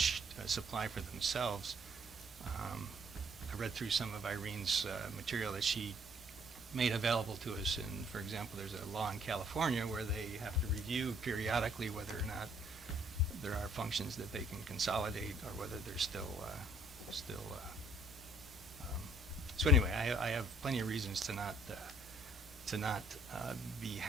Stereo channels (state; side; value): normal; both; correlation 0.63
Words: supply for themselves. I read through some of Irene's material that she made available to us, and for example, there's a law in California where they have to review periodically whether or not there are functions that they can consolidate, or whether they're still. So anyway, I have plenty of reasons to not be